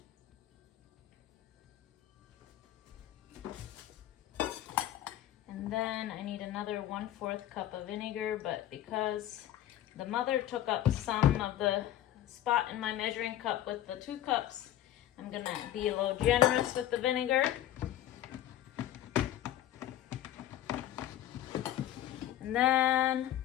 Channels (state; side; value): quieter; right; 12.7 dB